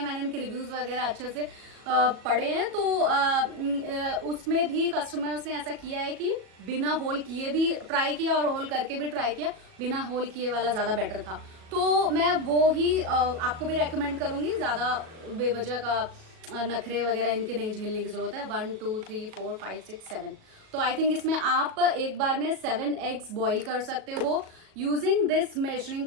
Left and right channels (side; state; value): left; late; 37 ms